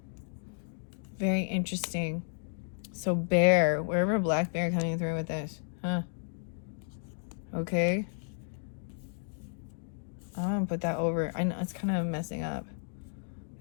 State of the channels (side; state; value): right; silent; digital silence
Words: Very interesting. So bear, wherever black bear coming through with this, huh? Okay. I'm gonna put that over. I know it's kind of messing up.